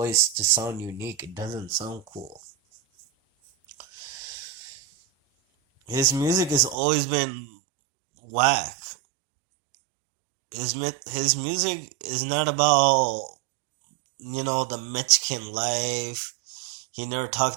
to sound unique. It doesn't sound cool. His music has always been whack. His music is not about, the Mexican life. He never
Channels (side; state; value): left; drops out; at 6.8 s